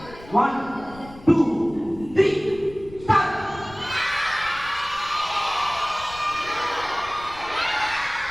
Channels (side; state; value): left; noise; rumble, 19 dB below the sound